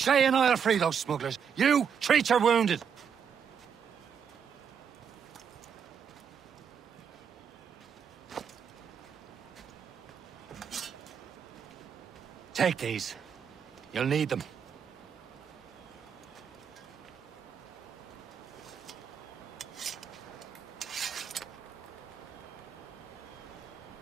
and I'll free those smugglers. You, treat your wounded. Take these. You'll need them.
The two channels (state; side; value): quieter; left; 7.3 dB